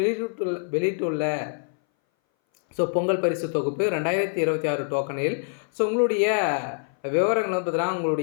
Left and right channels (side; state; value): right; silent; 60 dB below the other